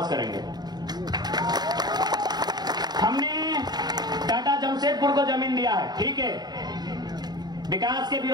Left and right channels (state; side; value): late; left; 0.20 ms